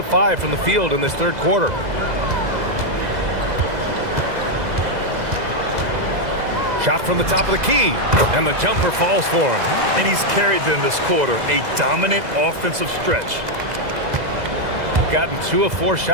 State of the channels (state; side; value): late; left; 2.0 ms